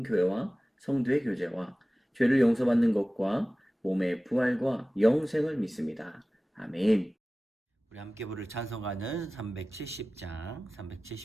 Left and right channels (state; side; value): normal; both; correlation 0.97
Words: 성도의 교제와 죄를 용서받는 것과 몸의 부활과 영생을 믿습니다. 아멘. 우리 함께 부를 찬송가는